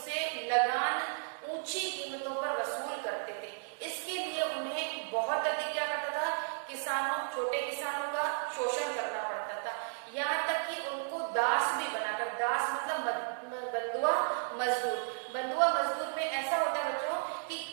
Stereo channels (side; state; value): left; silent; digital silence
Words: लगान, ऊंची कीमतों पर वसूल करते थे। इसके लिए उन्हें बहुत अधिक क्या करता था, किसानों, छोटे किसानों का शोषण करना पड़ता था। यहाँ तक कि उनको दास भी बनाकर, दास मतलब बंधुआ मजदूर। बंधुआ मजदूर में ऐसा होता है बच्चों कि